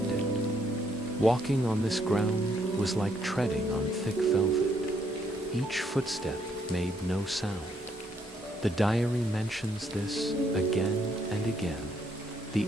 it. Walking on this ground was like treading on thick velvet. Each footstep made no sound. The diary mentions this again and again, the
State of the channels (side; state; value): both; normal; correlation 0.72